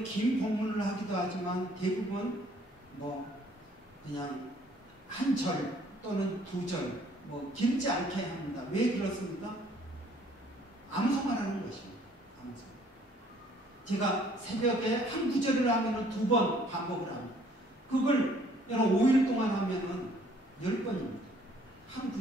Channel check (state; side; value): normal; both; correlation 0.60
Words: 긴 본문을 하기도 하지만 대부분 그냥 한 절 또는 두 절 길지 않게 합니다. 왜 그렇습니까? 암송하라는 것입니다. 암송. 제가 새벽에 한 구절을 하면 두 번 반복을 합니다. 그걸 여러분 5일 동안 하면은 10번입니다. 한